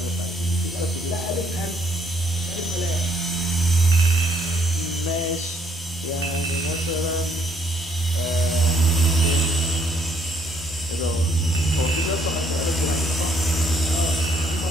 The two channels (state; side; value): normal; both; correlation 0.68